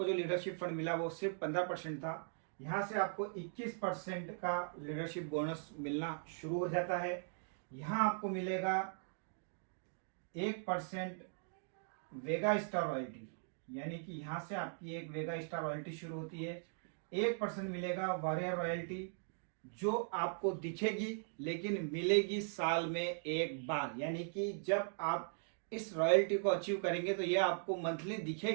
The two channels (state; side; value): silent; left; digital silence